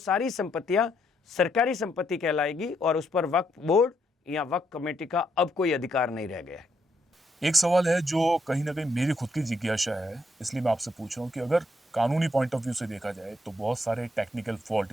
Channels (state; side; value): normal; both; correlation 0.76